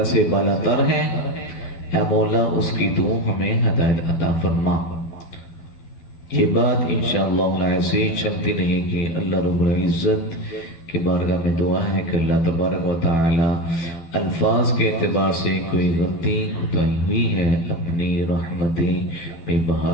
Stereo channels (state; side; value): late; right; 12 ms